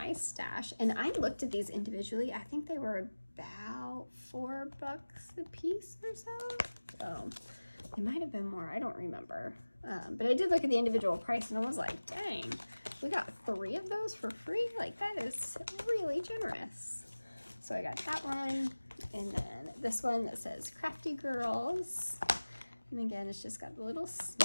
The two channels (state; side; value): inverted; both; correlation -1.00